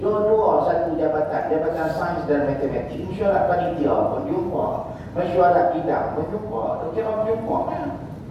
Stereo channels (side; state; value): both; identical; correlation 1.00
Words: satu jabatan sains dan matematik. Mesyuarat panitia pun jumpa, mesyuarat bidang pun jumpa. Tak kira berjumpa kan.